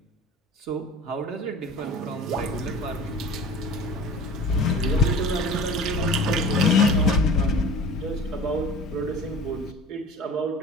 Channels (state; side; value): normal; both; correlation 0.40